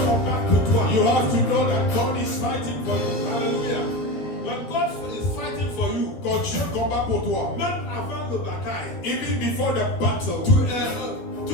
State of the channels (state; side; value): late; right; 12 ms